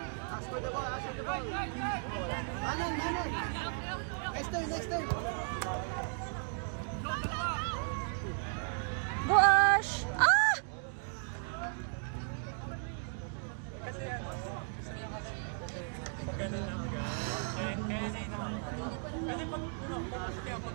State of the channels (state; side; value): silent; left; 54 dB below the other